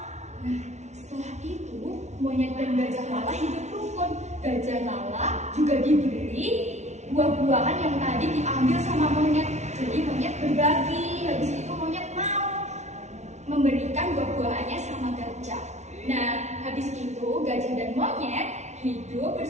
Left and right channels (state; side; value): late; left; 0.32 ms